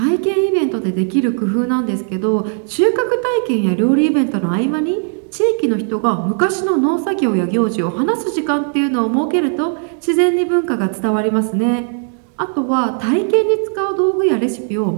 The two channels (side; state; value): left; silent; 55 dB below the other